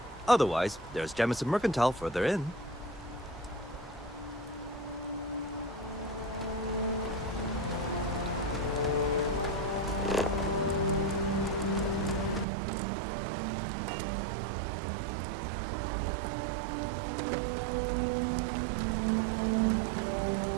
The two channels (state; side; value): drops out; left; at 12.5 s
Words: Otherwise, there's Jemison Mercantile further in.